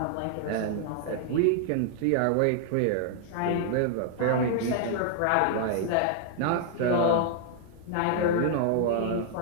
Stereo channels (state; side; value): different; both; correlation -0.01